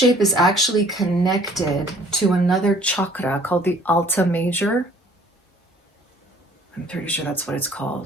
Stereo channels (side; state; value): both; normal; correlation 0.56